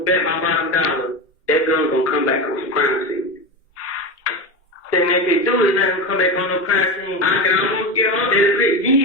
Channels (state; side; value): normal; both; correlation 0.20